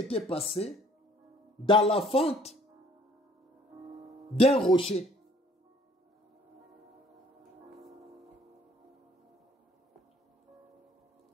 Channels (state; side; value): normal; both; correlation 0.58